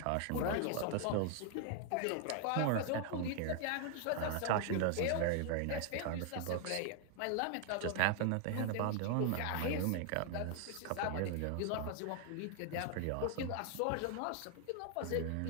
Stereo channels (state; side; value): different; both; correlation 0.00